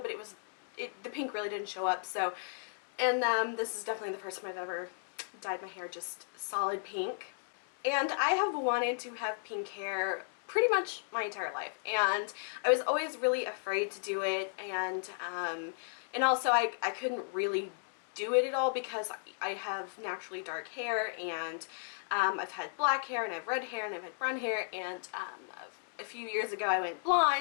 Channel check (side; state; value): right; silent; digital silence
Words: the pink really didn't show up, and this is definitely the first time I've ever dyed my hair just solid pink. And I have wanted to have pink hair pretty much my entire life, and I was always really afraid to do it, and also I couldn't really do it at all because I have naturally dark hair, and I've had black hair, and I have red hair, and I've had brown hair, and a few years ago I went